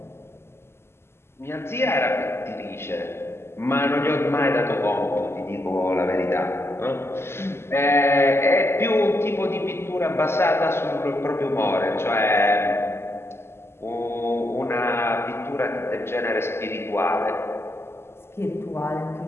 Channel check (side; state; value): right; late; 0.12 ms